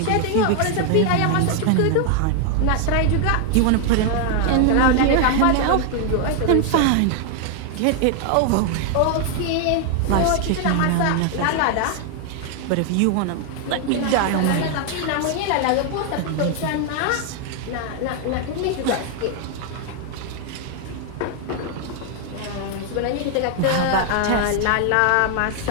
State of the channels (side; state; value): both; different; correlation 0.00